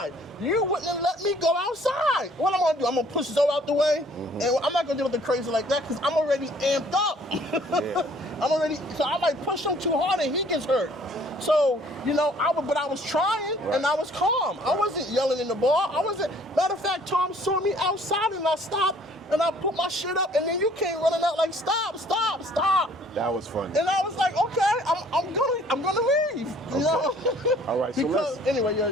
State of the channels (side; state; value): both; normal; correlation 0.57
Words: You wouldn't have let me go outside. What I'm going to do? I'm going to push Zoe out the way? And I'm not going to do nothing crazy like that because I'm already amped up. So I might push him too hard and he gets hurt. So, you know, I was trying and I was calm. I wasn't yelling in the bar. Matter of fact, Tom saw me outside and I stopped. And I put my shit up, and then you came running out like, stop. That was funny. And I was like, okay, I'm gonna leave. You know? All right. So